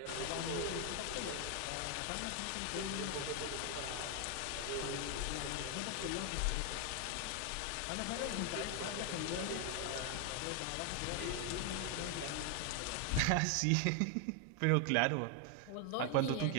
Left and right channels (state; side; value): different; both; correlation 0.00